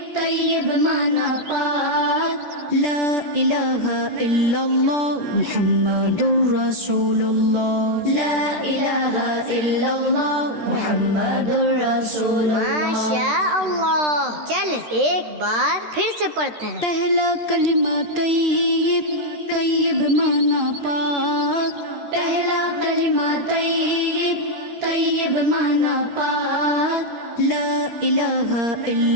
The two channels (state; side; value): late; left; 13 ms